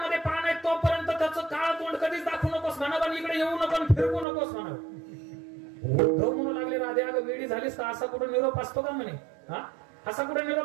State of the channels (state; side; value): drops out; left; at 4.2 s